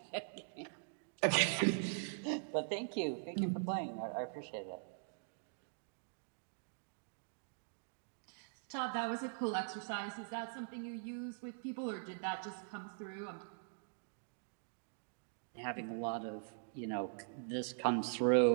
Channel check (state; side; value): silent; left; digital silence